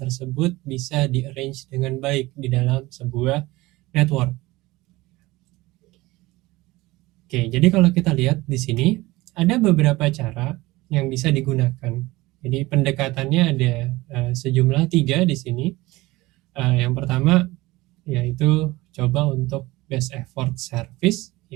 bisa di-arrange dengan baik di dalam sebuah network. Oke, jadi kalau kita lihat di sini ada beberapa cara yang bisa digunakan. Jadi pendekatannya ada sejumlah 3 di sini. Yang pertama yaitu coba untuk best effort service.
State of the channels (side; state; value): left; quieter; 20.0 dB